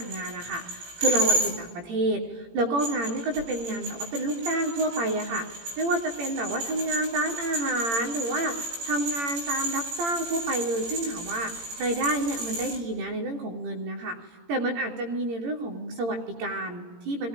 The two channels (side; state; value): left; late; 18 ms